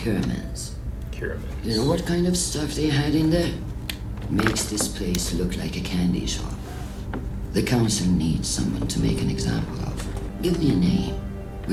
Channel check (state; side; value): identical; both; correlation 1.00